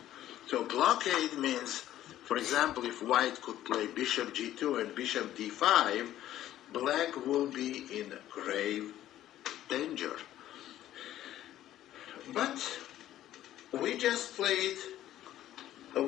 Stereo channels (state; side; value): quieter; right; 13.0 dB